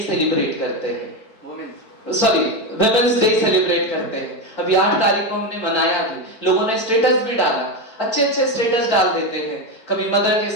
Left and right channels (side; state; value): right; late; 4.5 ms